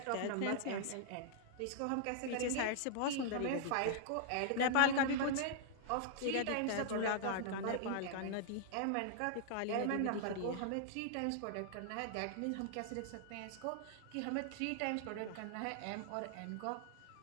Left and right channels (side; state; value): both; different; correlation -0.01